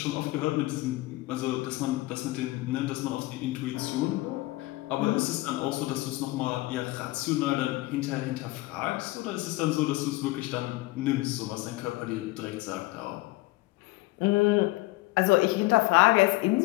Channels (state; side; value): quieter; right; 20.3 dB